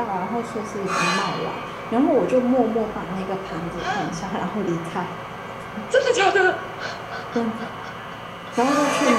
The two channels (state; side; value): noise; right; rumble, 29 dB below the sound